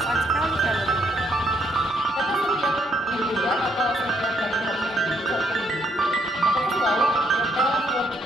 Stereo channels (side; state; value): both; normal; correlation 0.72